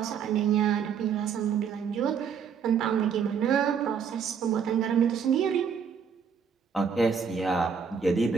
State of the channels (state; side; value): quieter; left; 6.8 dB